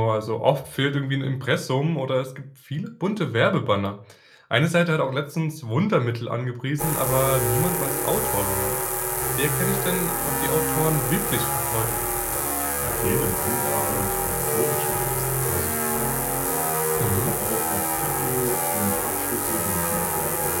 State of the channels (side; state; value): both; identical; correlation 1.00